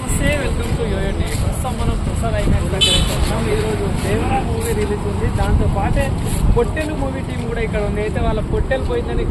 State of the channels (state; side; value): identical; both; correlation 1.00